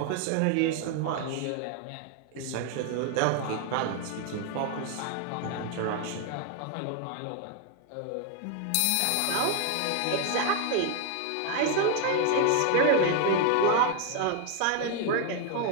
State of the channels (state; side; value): different; both; correlation 0.00